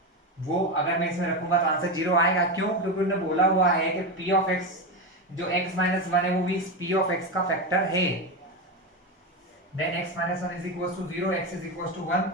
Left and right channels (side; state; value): both; normal; correlation 0.15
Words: वो अगर मैं इसमें रखूंगा तो आंसर 0 आएगा। क्यों? क्योंकि उन्होंने बोला हुआ है कि p ऑफ x जो x माइनस वन है वो भी p ऑफ x का फैक्टर है। Then x minus one is equal to 0, x is equal to 1।